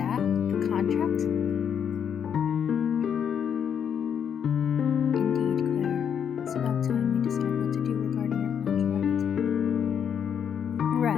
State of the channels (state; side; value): quieter; right; 8.0 dB